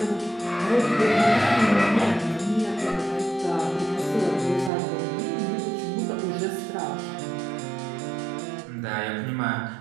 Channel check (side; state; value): left; drops out; at 4.7 s